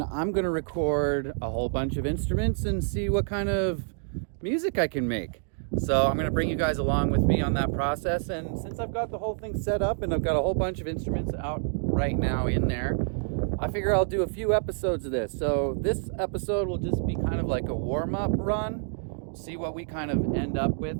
I'm going to record a whole bunch of instruments and see what kind of music I can make. So I'm going to bring you guys along with me on that process. And since I've got the whole thing set up and I've got a whole bunch of instruments out right now in there, I figure I'll do a few episodes of this. So this episode will just be kind of like a warm-up run. See what we kind of end up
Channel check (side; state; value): left; silent; digital silence